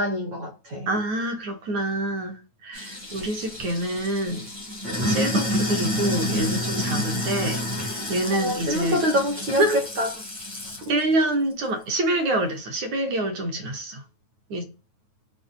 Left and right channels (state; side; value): late; left; 9.2 ms